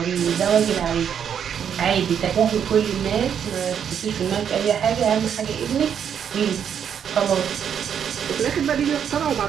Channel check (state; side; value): quieter; left; 8.2 dB